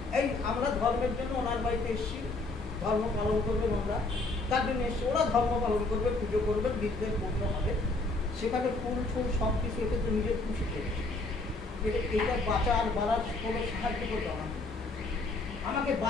এই আমরা ধর্মের জন্য ওনার বাড়িতে এসেছি, ধর্ম পালন করবেন ওরা, তার জন্য এসে ওরা ধর্ম পালন করবে, পুজো করবেন, বিদ্যের পূর্ণ হবে, সেখানে ফুল ফুল সব কিছু এতে তো নিজের খুশি করেছে। এটা বাঁচার বাড়ার কোনো সাহায্য করবে আমাকে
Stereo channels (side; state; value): right; quieter; 3.2 dB